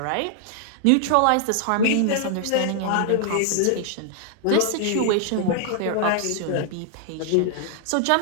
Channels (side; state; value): both; different; correlation 0.00